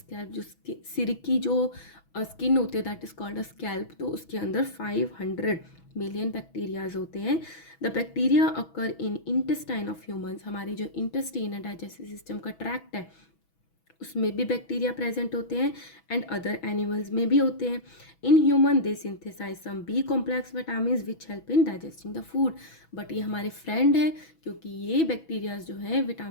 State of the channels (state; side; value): late; right; 6.1 ms